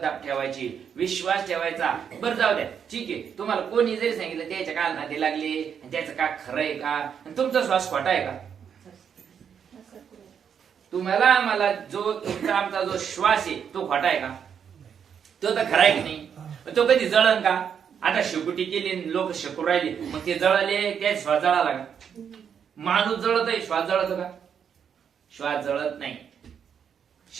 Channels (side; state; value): left; quieter; 7.7 dB